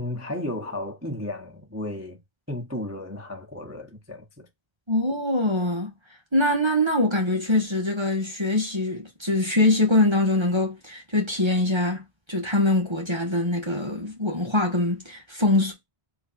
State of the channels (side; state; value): left; late; 1.3 ms